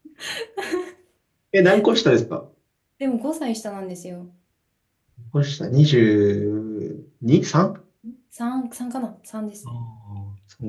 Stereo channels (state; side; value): identical; both; correlation 1.00